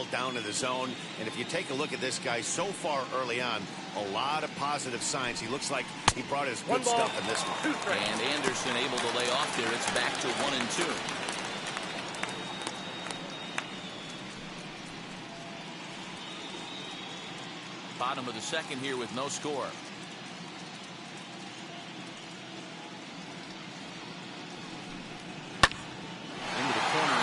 down in the zone. And if you take a look at this guy so far early on, a lot of positive signs. He looks like he brought his good stuff in this one. And Anderson able to lay off there. It's back to 1-2. Bottom of the second here with no score. Into the corner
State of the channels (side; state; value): both; identical; correlation 1.00